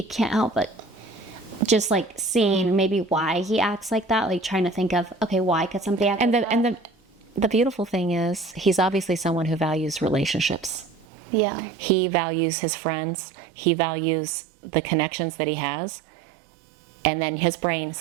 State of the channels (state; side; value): drops out; left; at 11.1 s